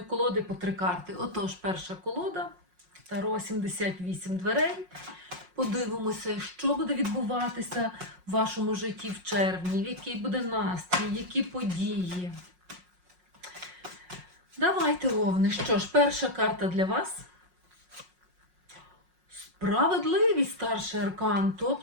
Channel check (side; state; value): left; late; 5.5 ms